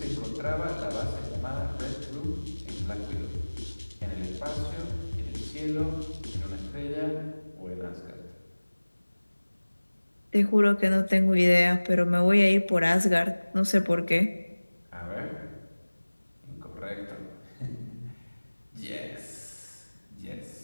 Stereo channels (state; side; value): inverted; both; correlation -1.00